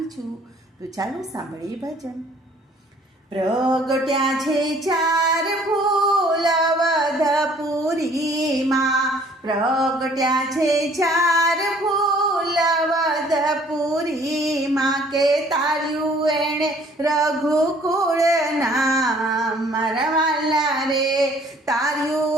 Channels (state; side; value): normal; both; correlation 0.57